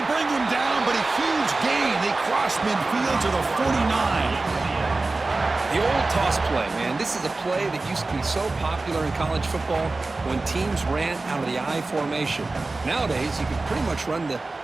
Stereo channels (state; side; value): quieter; left; 3.4 dB